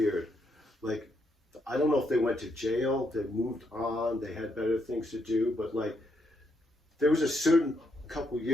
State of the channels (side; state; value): both; normal; correlation 0.78